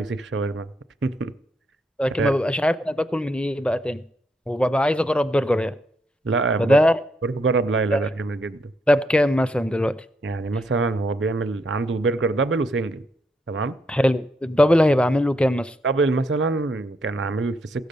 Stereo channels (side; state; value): both; normal; correlation 0.77